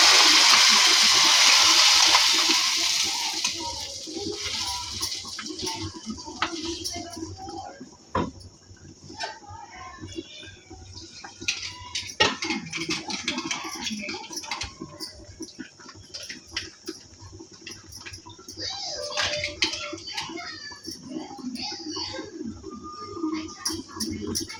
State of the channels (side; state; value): both; identical; correlation 1.00